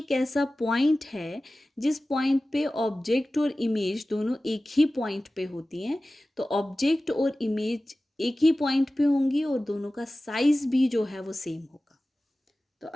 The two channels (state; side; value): normal; both; correlation 0.96